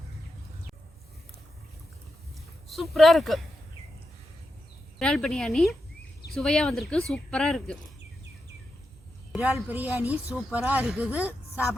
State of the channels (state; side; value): normal; both; correlation 0.87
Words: சூப்பராக இருக்கு. இறால் பிரியாணி சுவையாக வந்திருக்கு. சூப்பராக இருக்கு. இறால் பிரியாணி சூப்பராக இருக்குது.